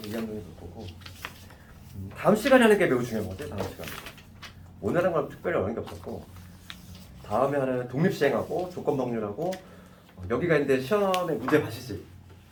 2학년이 볼 거고, 다음 시간에 하는 게 매우 중요한 거지. 다음 시간 오늘 하는 건 특별히 어려운 게 없었고, 다음에 하는 독립시행하고 조건법률하고 여기가 있는데 시험에 문제 봐시지.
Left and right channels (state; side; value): identical; both; correlation 1.00